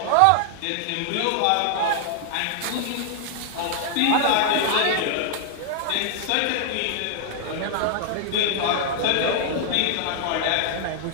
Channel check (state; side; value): different; both; correlation -0.01